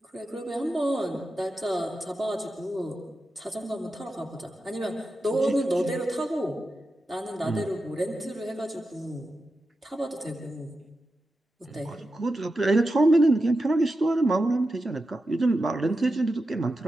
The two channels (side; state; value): both; normal; correlation 0.90